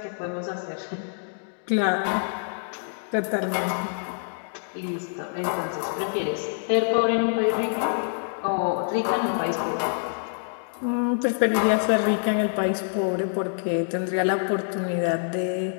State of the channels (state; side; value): silent; right; digital silence